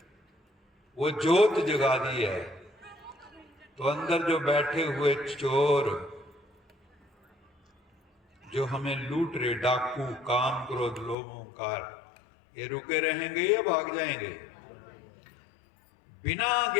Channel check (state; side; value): drops out; right; at 11.2 s